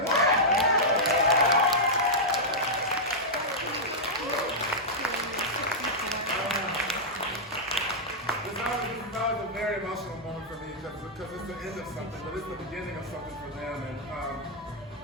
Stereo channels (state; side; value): normal; both; correlation -0.08